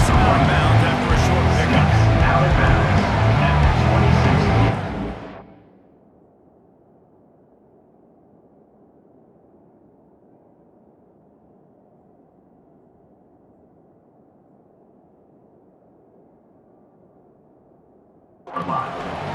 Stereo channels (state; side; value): identical; both; correlation 1.00